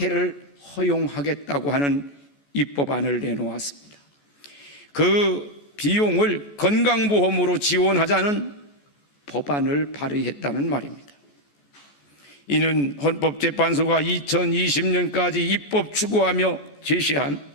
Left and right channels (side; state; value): right; late; 14 ms